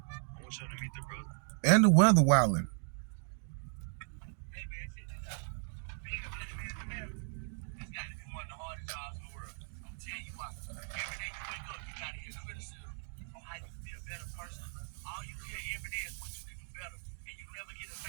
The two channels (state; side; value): silent; left; digital silence